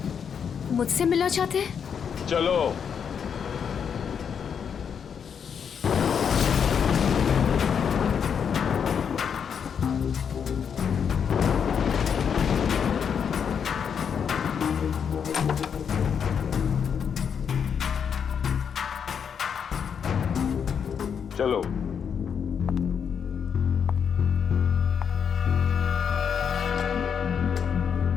मुझसे मिलना चाहते हैं? चलो। चलो।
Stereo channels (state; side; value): quieter; right; 7.2 dB